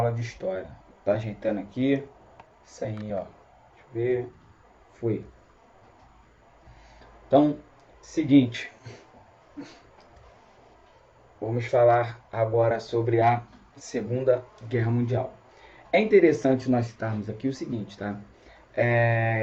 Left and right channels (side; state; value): both; identical; correlation 1.00